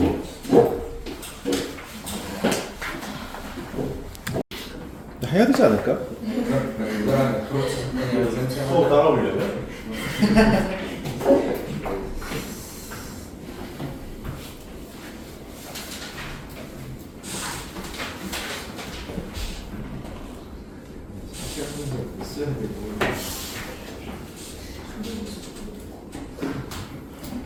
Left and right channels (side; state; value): both; identical; correlation 1.00